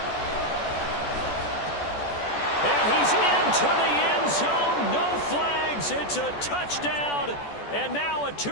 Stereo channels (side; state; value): right; late; 14 ms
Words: And he's into the end zone. No flags. It's a touchdown. And now a